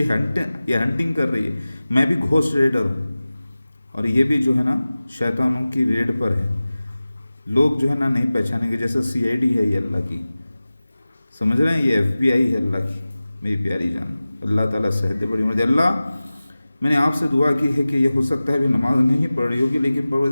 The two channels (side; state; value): both; inverted; correlation -0.97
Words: हंटिंग कर रही है। मैं भी घोस्ट रेडर हूँ, और ये भी जो है ना शैतानों की रेड पर है। लोग जो है ना नहीं पहचानेंगे, जैसे सीआईडी है ये अल्लाह की, समझ रहे हैं, ये एफबीआई है अल्लाह की, मेरी प्यारी जान। अल्लाह ताला सेहत बड़ी मुझे। अल्लाह, मैंने आपसे दुआ की है कि ये हो सकता है भी नमाज नहीं पढ़ रही होगी, लेकिन